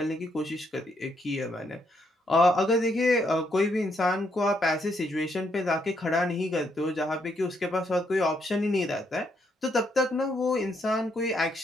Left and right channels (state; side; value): normal; both; correlation 0.75